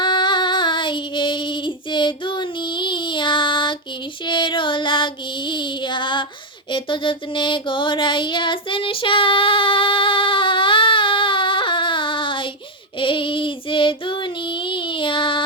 এই যে দুনিয়া কিসের লাগিয়া এত যত্নে গড়াইয়াছেন সাই। এই যে দুনিয়া,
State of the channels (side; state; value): both; normal; correlation 0.04